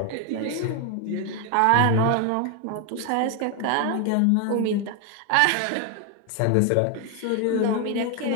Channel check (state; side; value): different; both; correlation 0.01